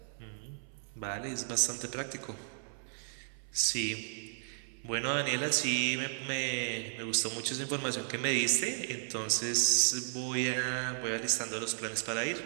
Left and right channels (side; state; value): left; silent; 55 dB below the other